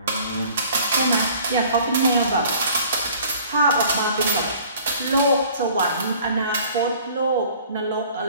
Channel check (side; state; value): both; inverted; correlation -0.51